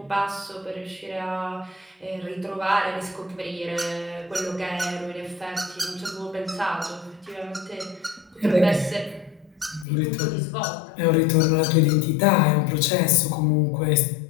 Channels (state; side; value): drops out; right; at 9.9 s